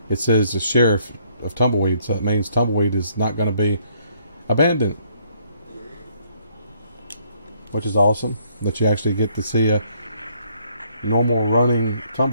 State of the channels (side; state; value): both; inverted; correlation -0.67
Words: it says the sheriff of Tumbleweed, so it means Tumbleweed is not going to be abandoned, which is awesome that you actually get to see a normal running